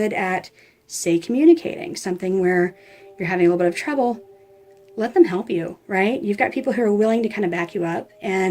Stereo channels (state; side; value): identical; both; correlation 1.00